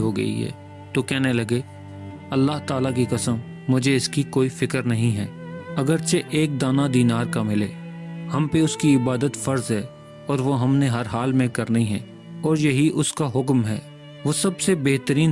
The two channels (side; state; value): both; identical; correlation 1.00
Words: गई है, तो कहने लगे, अल्लाह ताला की कसम मुझे इसकी कोई फ़िक्र नहीं है, अगरचे एक दाना दीनार का मिले। हम पे उसकी इबादत फ़र्ज़ है और वो हमने हर हाल में करनी है, और यही उसका हुक्म है। वो सबसे